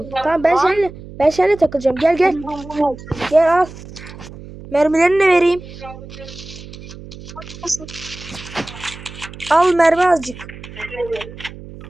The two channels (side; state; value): right; noise; hum, 15 dB below the sound